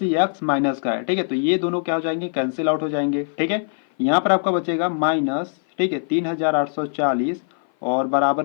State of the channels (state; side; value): silent; right; 57 dB below the other